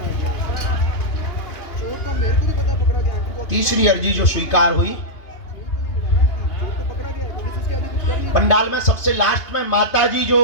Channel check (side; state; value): right; late; 2.8 ms